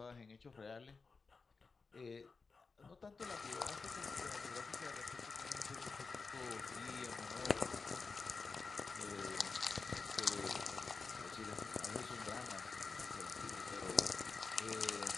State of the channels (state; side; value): quieter; right; 4.5 dB